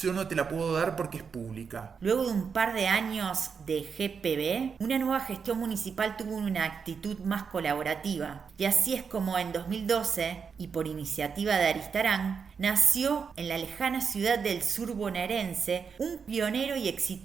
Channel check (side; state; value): left; quieter; 6.1 dB